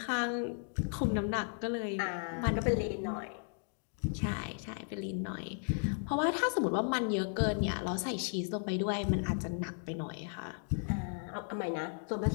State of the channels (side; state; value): right; silent; 54 dB below the other